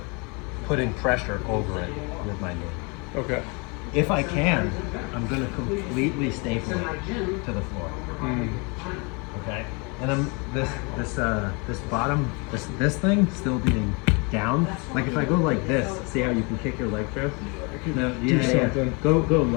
putting pressure over it with my knee. Okay. If I can, I'm gonna completely staple it to the floor. Okay. And I'm this bottom this thing still being down. Like if I go like this, see how you can kick your leg through? No, yeah. something. Go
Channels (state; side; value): quieter; right; 31.1 dB